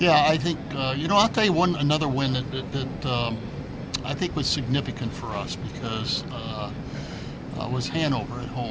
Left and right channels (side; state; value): both; identical; correlation 1.00